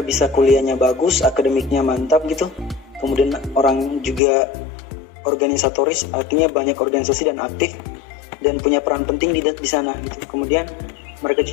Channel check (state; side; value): drops out; right; at 4.2 s